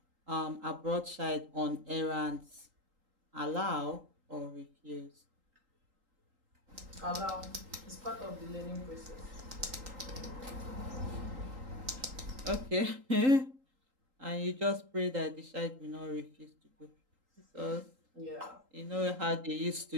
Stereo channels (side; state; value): left; late; 3.8 ms